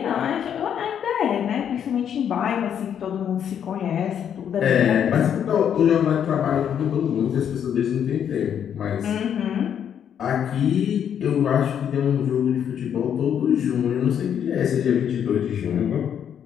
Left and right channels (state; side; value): quieter; right; 8.8 dB